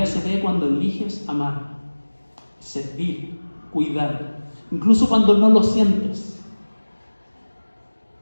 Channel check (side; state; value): both; inverted; correlation -1.00